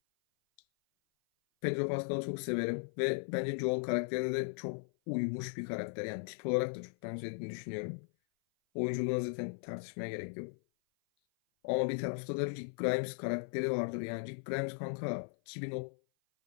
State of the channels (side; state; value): right; silent; 53 dB below the other